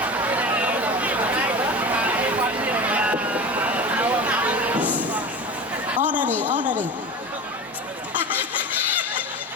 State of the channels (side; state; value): both; normal; correlation 0.31